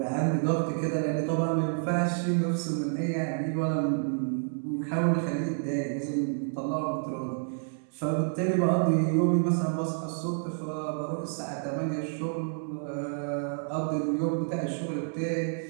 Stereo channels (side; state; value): left; silent; digital silence